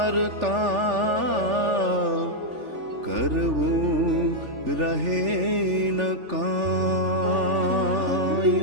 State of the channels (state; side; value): late; left; 3.4 ms